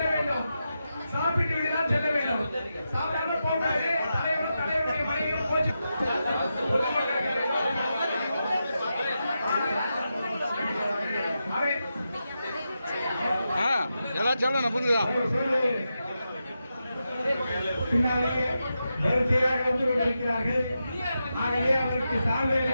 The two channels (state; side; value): inverted; both; correlation -0.88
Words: வேண்டும். சாப்பிட்டு விட்டுதான் செல்ல வேண்டும். சாப்பிடாம போகாது. தலைவருடைய மனைவியும் போச்சு. எல்லாம் சொல்லணும் புரியுதா? பின்னாலே வரிசையாக வந்து கொண்டிருக்கிறார்கள். ஆகவே அவருக்கு சால்வை